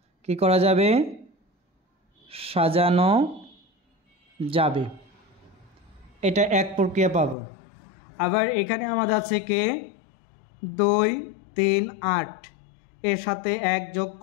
কি করা যাবে, সাজানো যাবে। এটা এক প্রক্রিয়া পাবো। আবার এখানে আমাদের আছে 2, 3, 8 এর সাথে 1 যোগ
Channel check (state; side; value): drops out; right; at 7.4 s